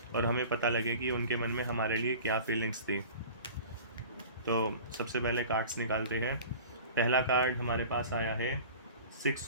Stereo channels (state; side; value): inverted; both; correlation -0.40